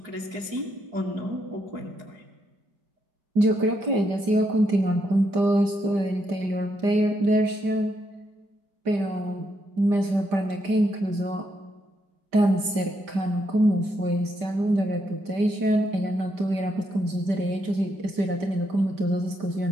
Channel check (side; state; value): left; late; 5.1 ms